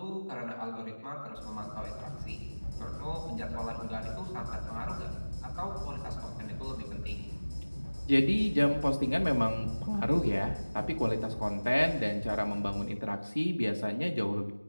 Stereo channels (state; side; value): inverted; both; correlation -1.00